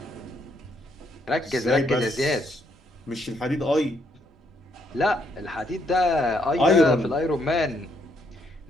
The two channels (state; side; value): normal; both; correlation 0.73